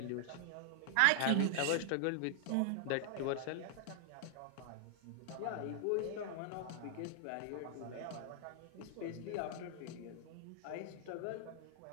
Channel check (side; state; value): both; different; correlation 0.00